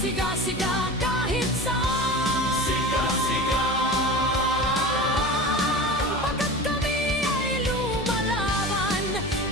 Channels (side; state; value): both; normal; correlation 0.32